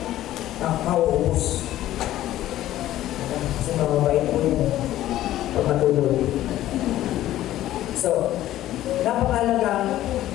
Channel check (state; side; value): quieter; right; 13.8 dB